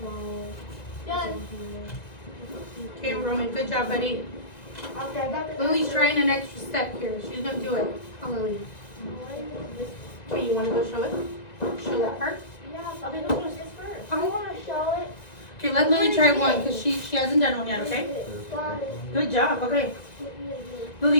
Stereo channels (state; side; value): late; right; 2.0 ms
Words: Done. Okay, Roman, good job, buddy. Okay, I got the Lily's answer. trying an extra step here. She's gonna do it. Oh, Lily. Okay, you wanna go show it? Show that part? Yeah, but I don't want this first. I want to show it. Okay, let Lily try one because she hasn't done one yet, okay? Got it. Good job, okay.